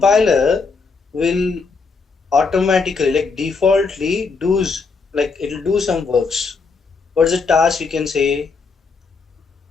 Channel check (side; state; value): right; quieter; 4.7 dB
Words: will automatically, like defaultly, does like it will do some works. What's the task you can say?